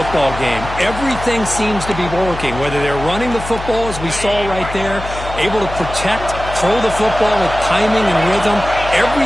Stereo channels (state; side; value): noise; left; hum, 10 dB below the sound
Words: game. Everything seems to be working, whether they're running the football, as we saw right there, able to protect, throw the football with timing and rhythm.